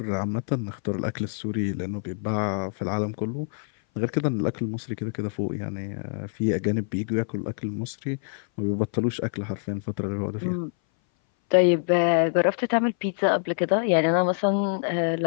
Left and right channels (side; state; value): right; silent; 59 dB below the other